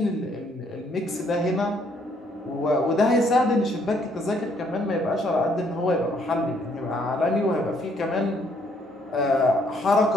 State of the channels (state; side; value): normal; both; correlation 0.67